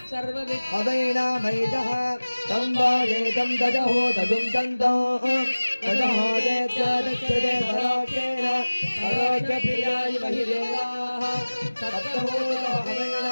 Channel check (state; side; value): inverted; both; correlation -1.00